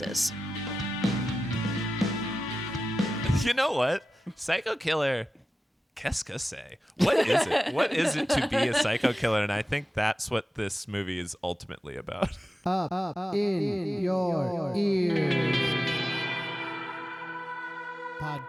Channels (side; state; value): both; normal; correlation 0.94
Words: You know what? Psycho killer. Qu'est-ce que c'est? What is it? What is it to be a psycho killer? And I think that's what this movie is ultimately about. Up in your ears.